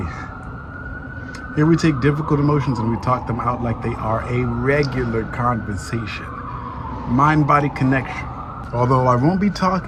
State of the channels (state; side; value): identical; both; correlation 1.00